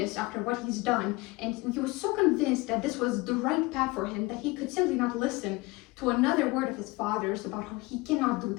after what he's done, and he was so convinced that this was the right path for him that he could simply not listen to another word of his father's about how he cannot do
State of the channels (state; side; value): quieter; right; 23.0 dB